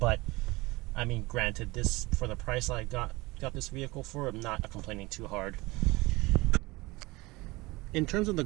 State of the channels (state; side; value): quieter; left; 22.3 dB